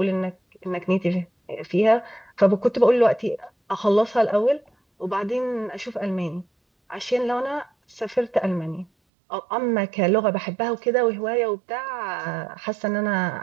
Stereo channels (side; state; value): left; drops out; at 8.9 s